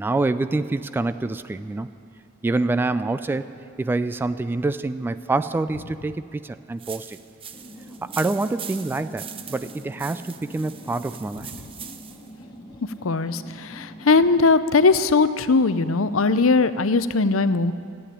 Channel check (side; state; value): both; normal; correlation 0.28